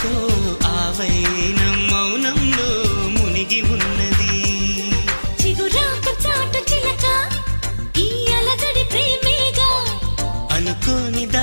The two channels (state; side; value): inverted; both; correlation -1.00